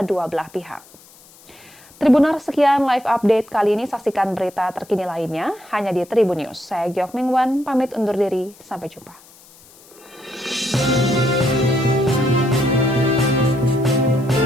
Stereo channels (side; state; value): left; noise; hiss, 25 dB below the sound